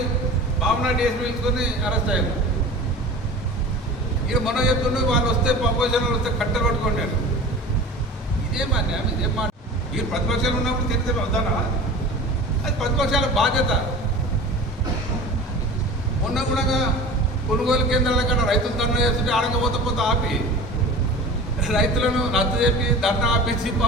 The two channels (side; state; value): both; normal; correlation 0.36